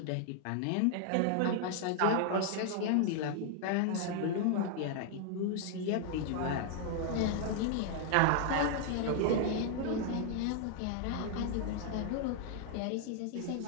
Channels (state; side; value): different; both; correlation 0.00